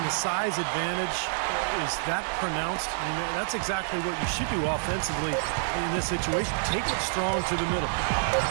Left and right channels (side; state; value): left; silent; 59 dB below the other